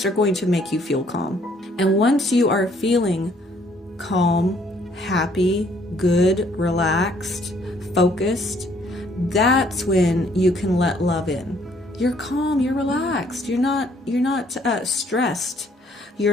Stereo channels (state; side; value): normal; both; correlation 0.64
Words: are going to make you feel calm. And once you are feeling calm, happy, good, relaxed, focused, that's when you can let love in. You're calm, you're relaxed, you're not stressed.